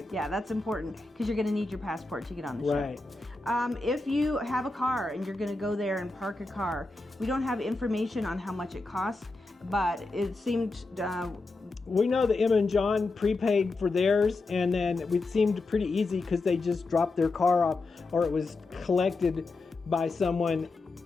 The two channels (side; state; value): right; quieter; 3.4 dB